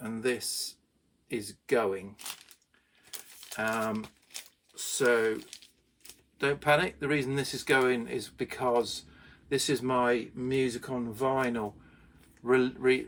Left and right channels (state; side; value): identical; both; correlation 1.00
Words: and this is going. So don't panic. The reason this is going is because this is my music on vinyl